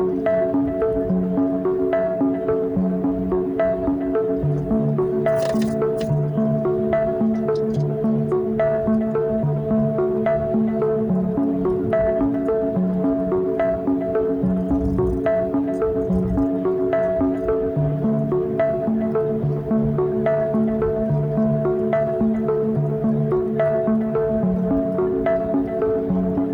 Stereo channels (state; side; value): identical; both; correlation 1.00